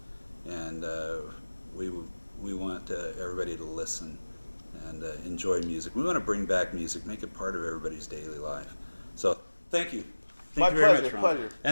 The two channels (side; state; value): both; inverted; correlation -1.00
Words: And we want everybody to listen and enjoy music. We want to bring back music, make it part of everybody's daily life. So thank you. Thank My you very pleasure, much, Ron. pleasure.